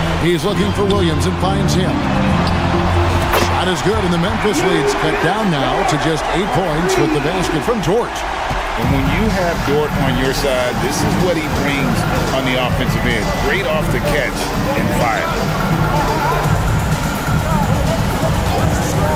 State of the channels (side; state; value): both; identical; correlation 1.00